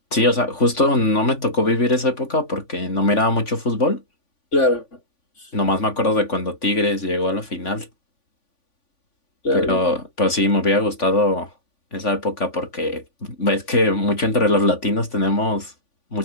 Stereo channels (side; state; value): right; late; 3.5 ms